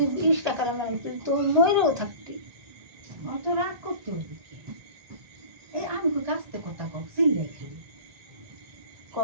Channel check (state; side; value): late; left; 1.2 ms